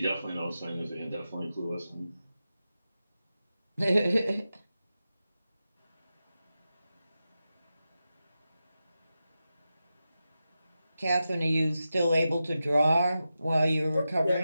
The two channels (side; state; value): both; inverted; correlation -0.91